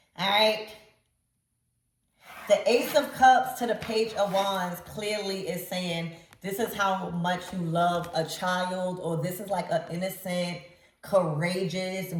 All right. The Ace of Cups to the Page of Wands clearly is saying this is how much you love a child, or this is like an innocent, courageous,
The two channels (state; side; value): identical; both; correlation 1.00